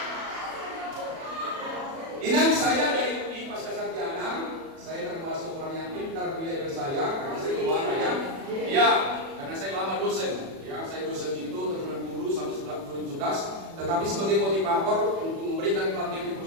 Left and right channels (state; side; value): late; left; 36 ms